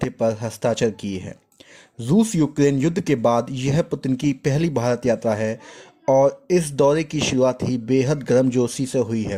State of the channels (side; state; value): both; identical; correlation 1.00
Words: पर हस्ताक्षर किए हैं। रूस यूक्रेन युद्ध के बाद यह पुतिन की पहली भारत यात्रा है और इस दौरे की शुरुआत ही बेहद गर्मजोशी से हुई